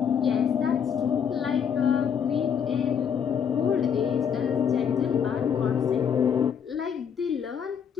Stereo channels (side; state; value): right; quieter; 7.6 dB